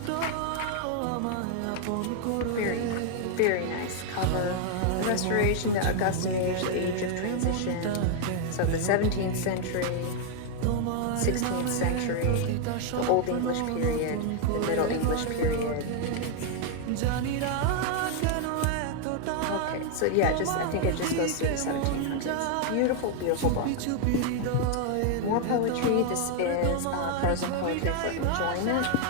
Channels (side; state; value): both; different; correlation 0.00